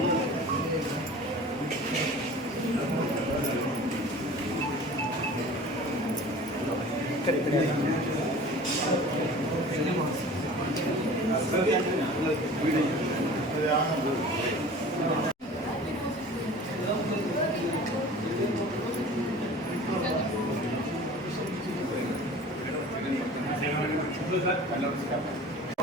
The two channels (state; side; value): normal; both; correlation 0.42